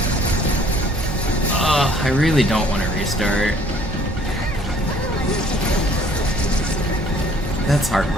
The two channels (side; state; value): both; normal; correlation 0.58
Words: I really don't want to restart. That's